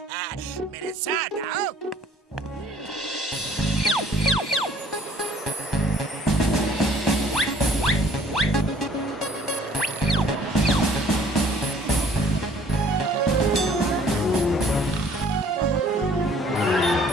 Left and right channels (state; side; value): normal; both; correlation 0.56